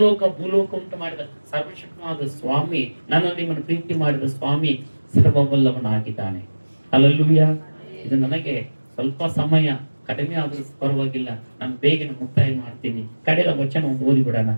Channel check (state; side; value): inverted; both; correlation -1.00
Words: ಭೂಲೋಕ ಉಂಟು ಮಾಡಿದ ಸರ್ವಶಕ್ತನಾದ ಸ್ವಾಮಿ, ನನ್ನ ನಿಮ್ಮನ್ನು ಪ್ರೀತಿ ಮಾಡಿದ ಸ್ವಾಮಿ ಸರ್ವವಲ್ಲವನಾಗಿದ್ದಾನೆ. ಹಲ್ಲೆಲೂಯಾ. ಇದು ನನಗೆ ಸ್ವಲ್ಪ ಸಮಯ ಕಡಿಮೆ ಆದ್ರೂ ಪರವಾಗಿಲ್ಲ, ನಾನು ಬೇಗನೆ ಮುಕ್ತಾಯ ಮಾಡ್ತೀನಿ. ಕಡೆಯ ವಚನ ಒಂದು ಓದಿ ಬಿಡೋಣ.